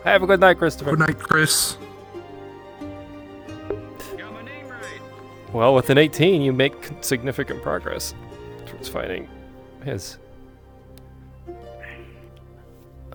Have a good night, Christopher. Good night, Chris. Got my name right. Well, with an 18, you make significant progress towards finding his.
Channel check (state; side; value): identical; both; correlation 1.00